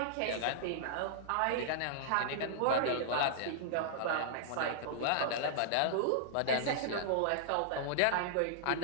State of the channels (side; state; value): both; different; correlation -0.02